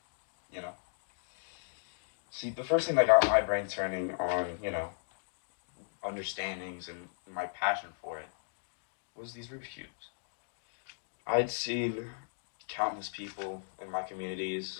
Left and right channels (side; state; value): right; silent; digital silence